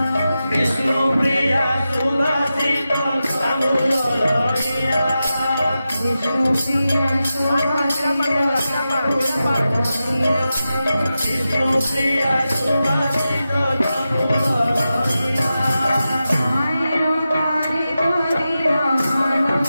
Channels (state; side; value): inverted; both; correlation -0.91